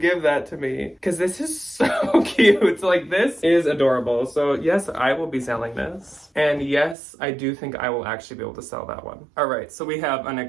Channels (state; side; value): drops out; left; at 7.0 s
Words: that to me? Because this is so cute. Like, this is adorable. So yes, I will be selling this. And yes, I do think I will actually be able to sell that one. All right, so we have an